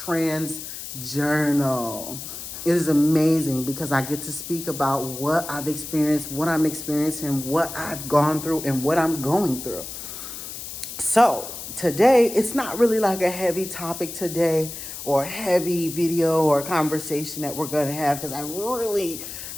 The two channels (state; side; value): noise; left; hiss, 9 dB below the sound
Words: Journal. It is amazing because I get to speak about what I've experienced, what I'm experiencing, what I've gone through, and what I'm going through. So today, it's not really like a heavy topic today or a heavy video or conversation that we're going to have, because I really